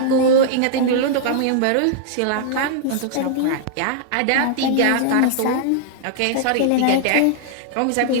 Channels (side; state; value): both; different; correlation -0.01